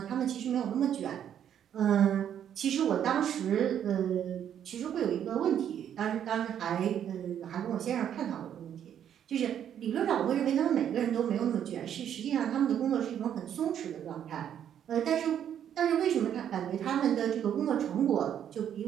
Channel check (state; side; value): quieter; left; 9.6 dB